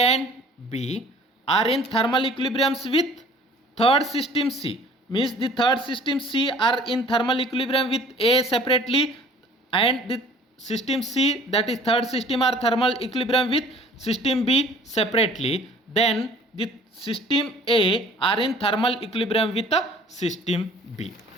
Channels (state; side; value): normal; both; correlation 0.51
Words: and B are in thermal equilibriums with third system C, means the third system C are in thermal equilibrium with A separately, and the system C, that is third system, are thermal equilibrium with system B separately, then the system A are in thermal equilibrium with the system B.